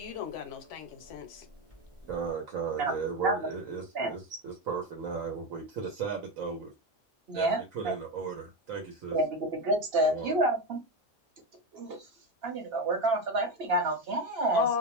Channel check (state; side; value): normal; both; correlation 0.14